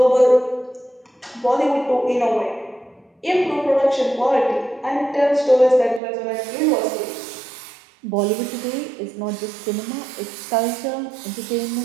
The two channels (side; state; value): left; drops out; at 6.0 s